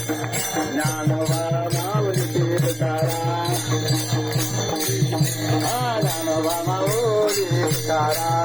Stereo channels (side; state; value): both; identical; correlation 1.00